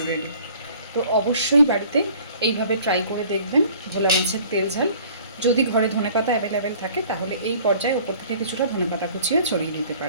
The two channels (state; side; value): inverted; both; correlation -0.51